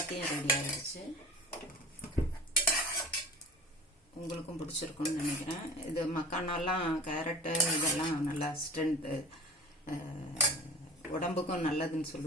ரெடி ஆயிடுச்சு. உங்களுக்கும் பிடிச்சிருக்குன்னு நினைக்கிறேன். இது மக்கானாலாம் கேரட்டு இதெல்லாம் நல்லா ஸ்ட்ரென்த்து, உடம்புக்கும் நல்லதுன்னு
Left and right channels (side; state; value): both; normal; correlation 0.40